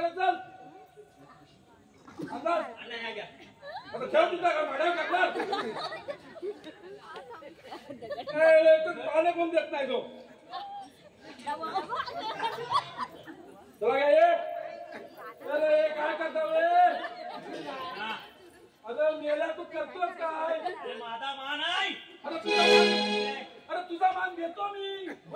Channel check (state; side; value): identical; both; correlation 1.00